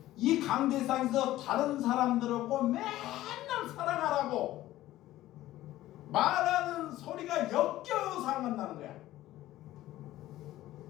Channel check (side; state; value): right; quieter; 15.1 dB